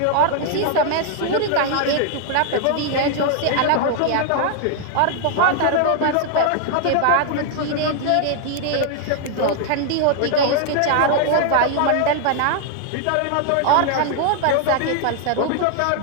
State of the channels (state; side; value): different; both; correlation 0.00